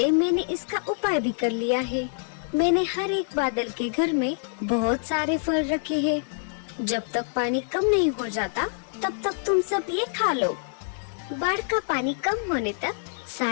मैंने इसका उपाय भी कर लिया है। मैंने हर एक बादल के घर में बहुत सारे फल रखे हैं। जब तक पानी कम नहीं हो जाता तब तक तुम सब ये खा लो। बाढ़ का पानी कम होने तक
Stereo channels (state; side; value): silent; right; digital silence